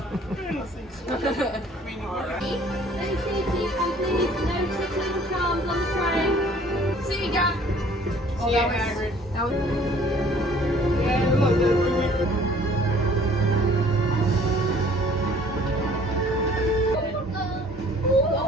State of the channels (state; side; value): normal; both; correlation 0.54